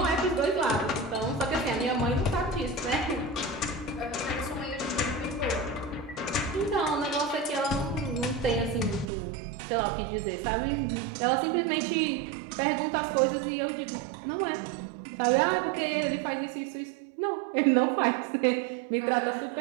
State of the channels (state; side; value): drops out; left; at 9.1 s